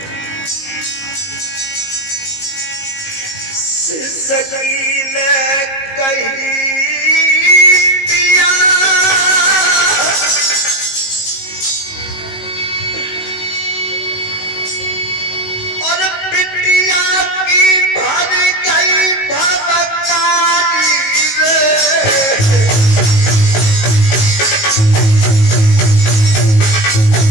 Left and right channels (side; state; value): right; late; 19 ms